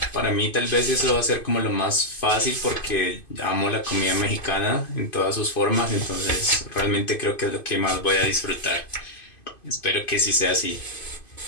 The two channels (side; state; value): right; late; 2.5 ms